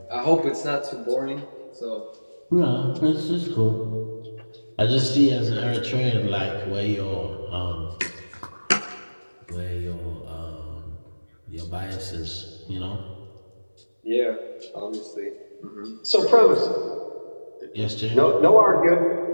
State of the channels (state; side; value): inverted; both; correlation -1.00